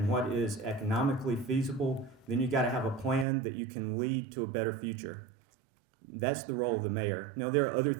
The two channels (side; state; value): left; drops out; at 3.2 s